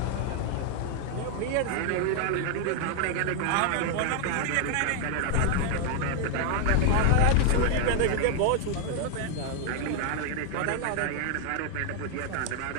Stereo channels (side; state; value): both; different; correlation 0.00